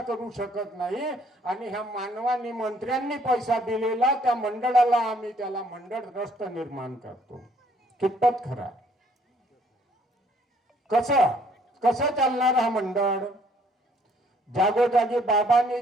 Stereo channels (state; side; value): normal; both; correlation 0.63